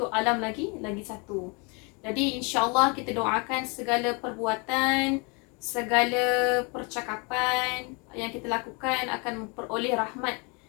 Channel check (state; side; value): quieter; right; 31.8 dB